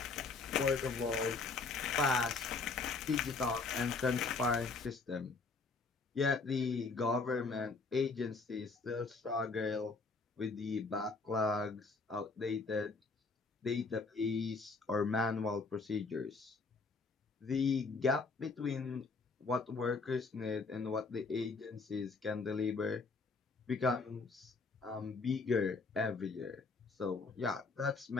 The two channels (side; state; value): right; quieter; 4.2 dB